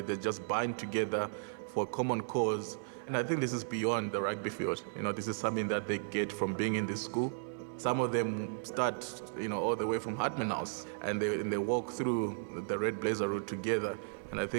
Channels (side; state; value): left; silent; 54 dB below the other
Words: They just bind together for a common cause. And I think this is beyond the rugby field. You know, this is something that they get from being in this school. Some of them start, you know, all the way from Hartman House, and they walk through the Red Blazer route together. And I